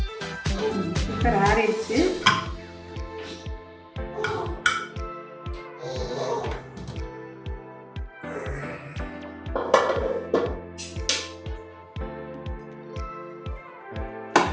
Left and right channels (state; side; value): identical; both; correlation 1.00